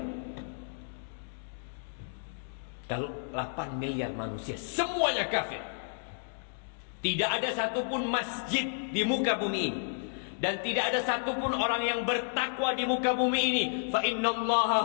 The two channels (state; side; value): silent; right; digital silence